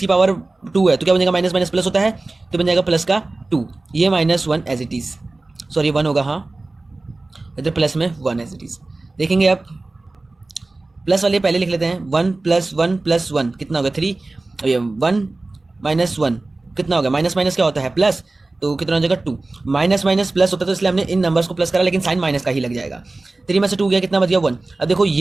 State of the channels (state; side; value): quieter; left; 3.2 dB